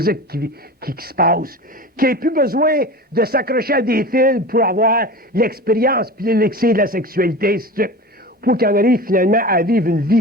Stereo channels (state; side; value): normal; both; correlation 0.33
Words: qui se passe, qu'il n'ait plus besoin de s'accrocher à des fils pour avoir l'expérience puis l'élixir de la sexualité, ainsi de suite, pour qu'il en arrive finalement à vivre une